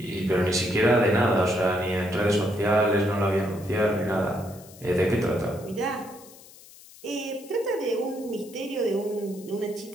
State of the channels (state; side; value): noise; left; hiss, 21 dB below the sound